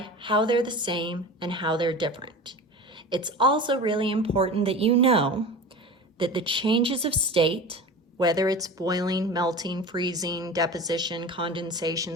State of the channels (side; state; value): both; normal; correlation 0.33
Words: how they're the same and how they're different. It's also really important that you know that the changes of state, whether it's boiling, melting, freezing, deposition,